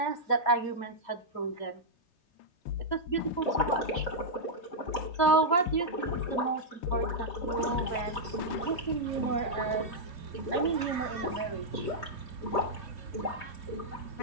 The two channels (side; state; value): right; late; 3.2 ms